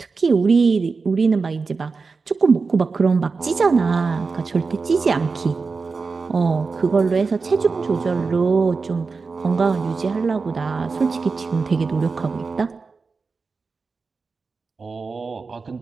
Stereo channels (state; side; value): quieter; left; 4.5 dB